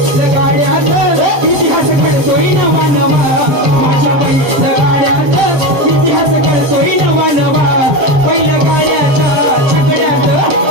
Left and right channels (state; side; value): late; left; 7.6 ms